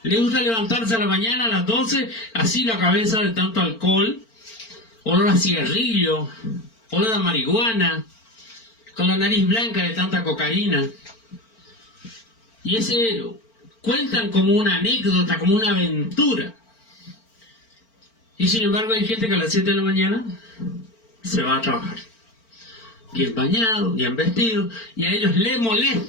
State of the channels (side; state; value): right; late; 4.4 ms